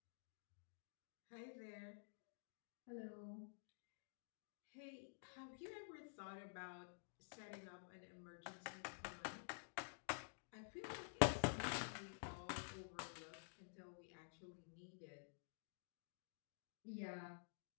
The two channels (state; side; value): silent; right; digital silence